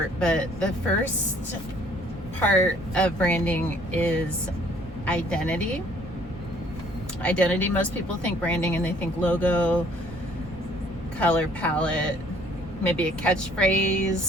but the first part of branding is identity. Identity, most people think branding and they think logo, color palette, maybe a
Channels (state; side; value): normal; both; correlation 0.59